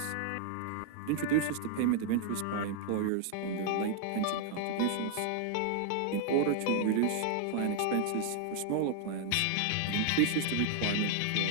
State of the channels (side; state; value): both; different; correlation 0.00